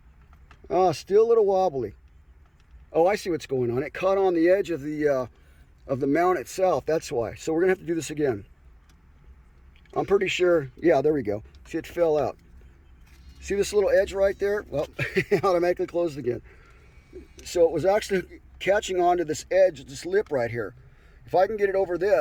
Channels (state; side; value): identical; both; correlation 1.00